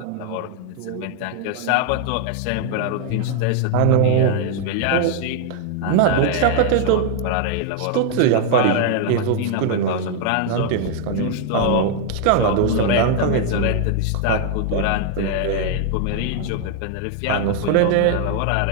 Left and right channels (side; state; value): both; different; correlation 0.00